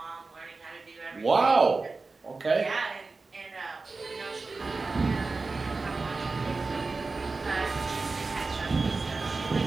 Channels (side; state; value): left; quieter; 3.9 dB